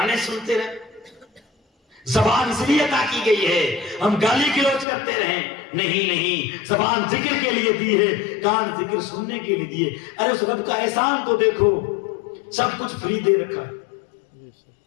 سنتے رہیں. زبان اس لیے عطا کی گئی ہے ہم گالی گلوچ کرتے رہیں. نہیں، زبان ذکر کے لیے دی ہے، کان ذکر سننے کے لیے دیے. ارے اس رب کا احسان تو دیکھو، سب کچھ فری دے رکھا.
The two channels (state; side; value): drops out; right; at 4.9 s